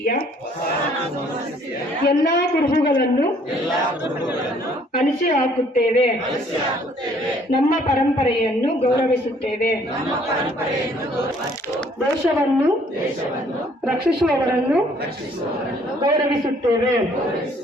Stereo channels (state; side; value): normal; both; correlation 0.61